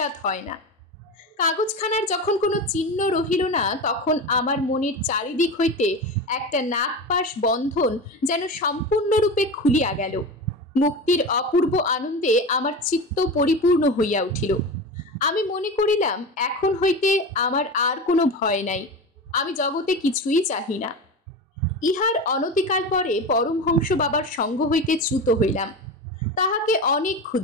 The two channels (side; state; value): both; normal; correlation 0.25